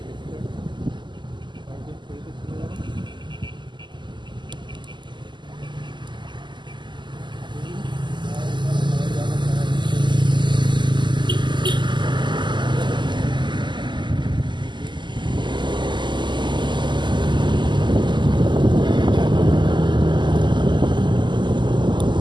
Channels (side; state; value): left; late; 0.22 ms